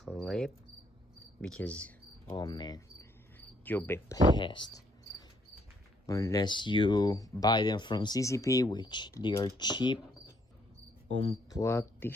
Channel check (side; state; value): both; normal; correlation 0.69